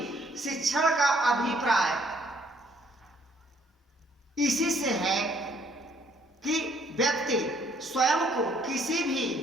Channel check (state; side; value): normal; both; correlation 0.65